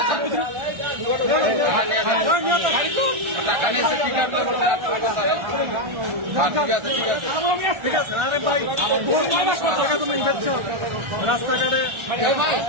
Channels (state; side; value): late; left; 1.4 ms